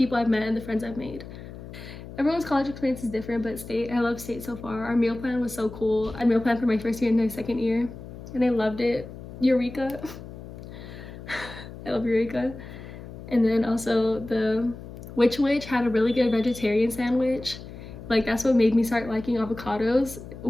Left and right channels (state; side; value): noise; left; hum, 13 dB below the sound